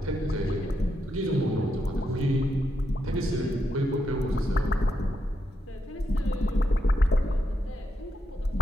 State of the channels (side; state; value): both; normal; correlation 0.83